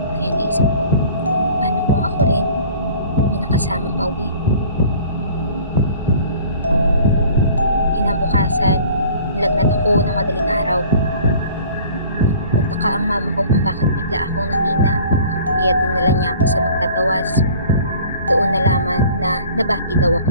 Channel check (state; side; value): inverted; both; correlation -0.48